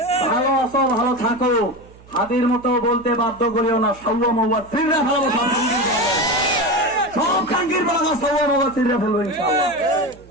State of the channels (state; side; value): noise; right; hum, 24 dB below the sound